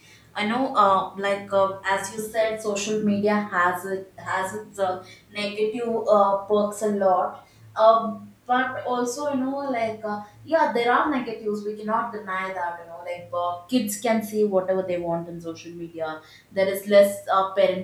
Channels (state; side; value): identical; both; correlation 1.00